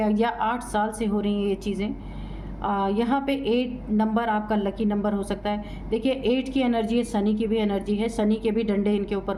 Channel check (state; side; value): identical; both; correlation 1.00